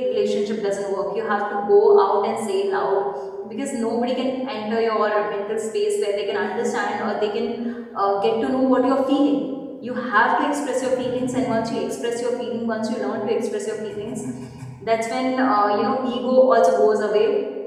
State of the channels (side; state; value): both; identical; correlation 1.00